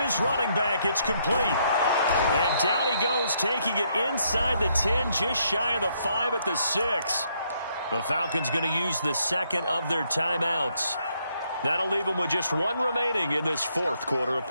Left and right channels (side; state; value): both; inverted; correlation -0.73